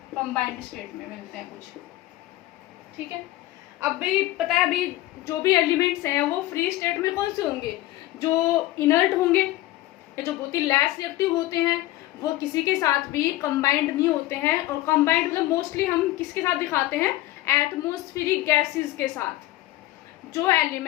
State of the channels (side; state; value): right; quieter; 16.7 dB